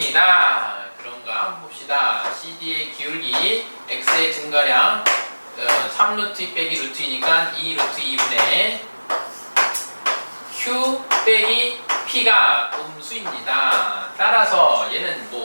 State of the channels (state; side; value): inverted; both; correlation -1.00